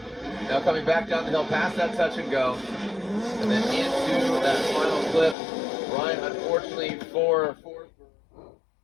Now coming back down the hill past that touch and go. And then into that final clip. Ryan, unfortunately for Forsberg,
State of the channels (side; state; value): right; drops out; at 5.4 s